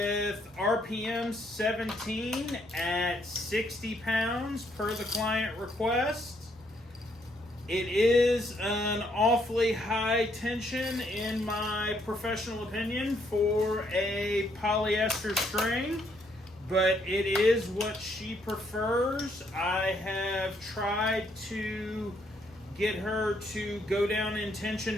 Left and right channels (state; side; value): normal; both; correlation 0.71